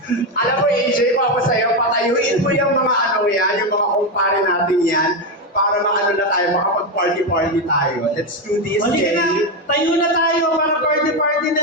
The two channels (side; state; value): both; normal; correlation 0.10